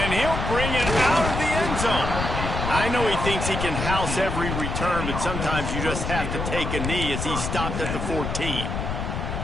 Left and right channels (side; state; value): left; noise; rumble, 3 dB below the sound